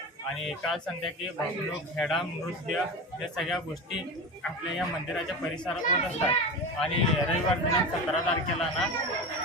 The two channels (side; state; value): both; normal; correlation 0.26